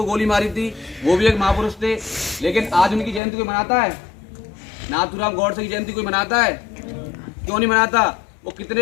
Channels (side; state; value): right; drops out; at 3.2 s